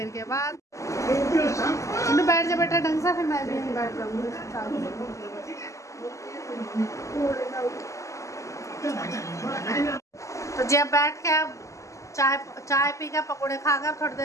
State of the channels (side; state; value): right; late; 0.15 ms